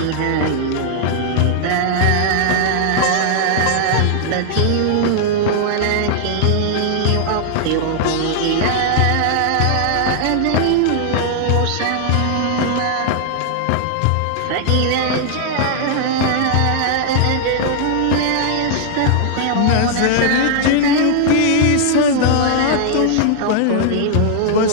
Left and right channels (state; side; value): different; both; correlation -0.01